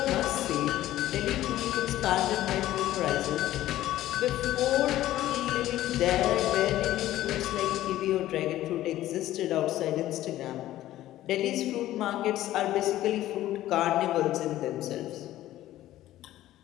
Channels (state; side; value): quieter; right; 14.3 dB